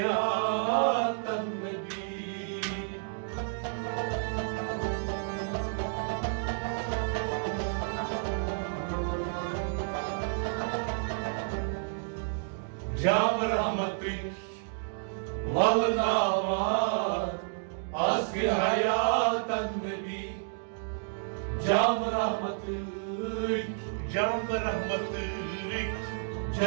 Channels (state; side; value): silent; left; digital silence